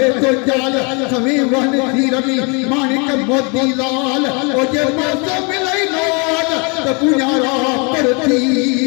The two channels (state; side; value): quieter; right; 32.4 dB